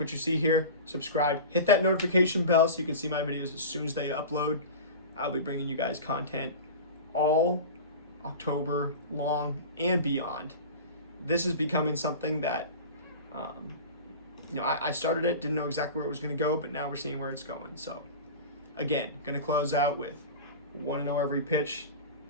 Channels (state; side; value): inverted; both; correlation -0.32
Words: you see here, subscribe, hit that notification bell so you can see my videos as soon as they upload. I'll be bringing you guys content all October long and beyond. This is becoming something that, I started it, didn't know exactly where it was going to go, but now we're seeing where it's going. So, again, going to close out with 1-0 every pitch,